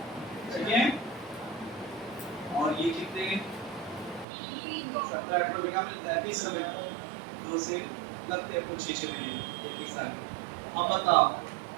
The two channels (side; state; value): left; drops out; at 4.2 s